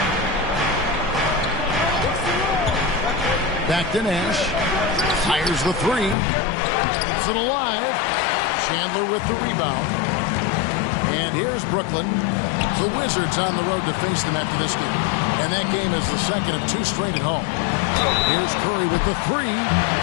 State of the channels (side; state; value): right; drops out; at 6.2 s